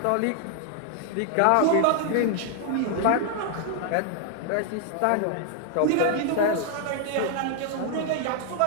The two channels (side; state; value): both; different; correlation 0.00